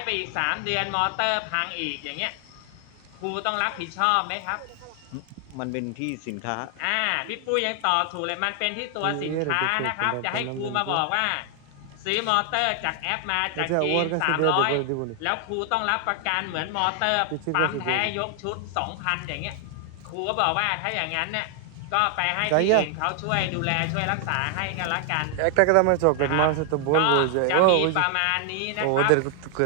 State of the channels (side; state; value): both; different; correlation 0.00